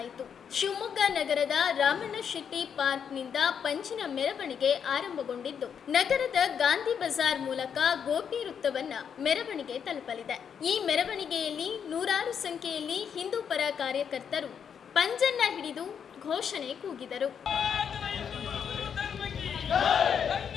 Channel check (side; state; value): right; quieter; 7.5 dB